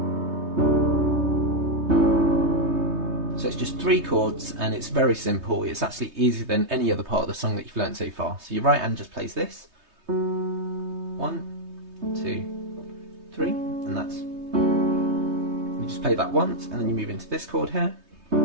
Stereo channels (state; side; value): late; left; 3.2 ms